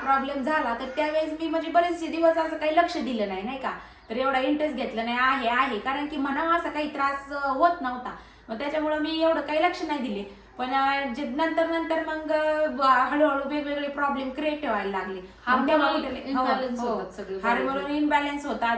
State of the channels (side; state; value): both; identical; correlation 1.00